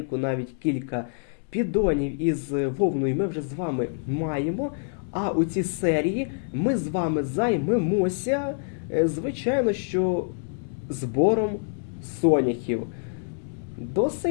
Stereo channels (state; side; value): silent; right; 61 dB below the other